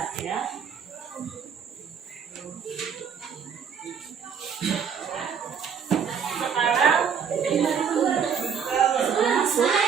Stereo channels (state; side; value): quieter; left; 7.1 dB